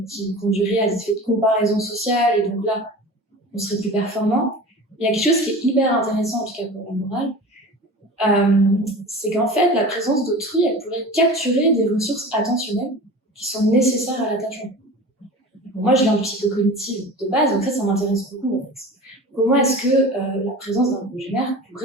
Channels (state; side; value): normal; both; correlation 0.36